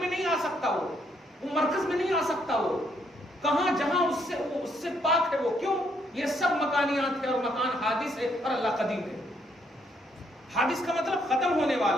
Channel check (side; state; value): both; normal; correlation 0.72